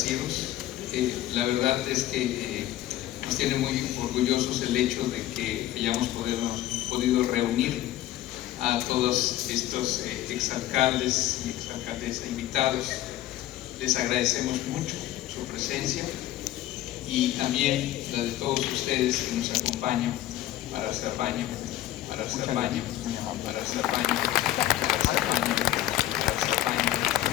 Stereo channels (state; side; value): quieter; right; 14.1 dB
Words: La verdad es que nos tiene muy orgullosos el hecho de que hayamos podido reunir a todos estos exalcaldes y exalcaldesas invitados. Les agradecemos mucho su presencia y también la de todos ustedes que nos acompañan para hacer baño, para hacer baño, para hacer baño.